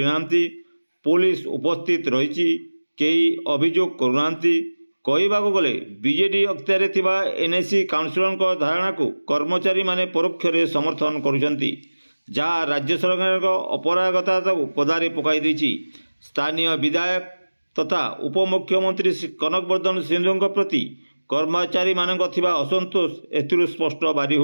पुलिस उपस्थित रही कई अभियोग करूना। कहवाक गले बीजेडी अख्तियार थिबा एनएसी काउंसिलर धारणा को कर्मचारी माने परोक्ष रे समर्थन करुचंती, जहाँ राज्य सरकार अपरागता को पदारे पकाई देछि। स्थानीय विधायक तथा उपमुख्यमंत्री कनकवर्धन सिंधु प्रति कर्मचारी मानक थिबा असंतोष एथिरु स्पष्ट बारी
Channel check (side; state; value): both; inverted; correlation -1.00